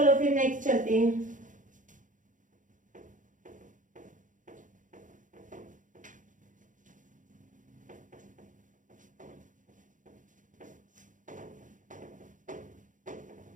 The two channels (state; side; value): late; left; 0.37 ms